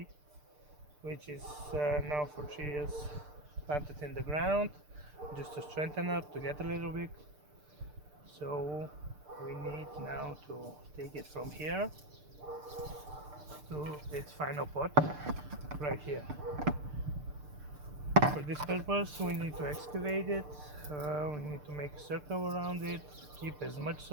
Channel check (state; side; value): late; left; 6.7 ms